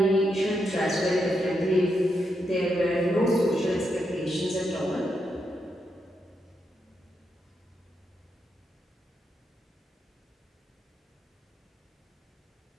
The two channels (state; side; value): normal; both; correlation 0.82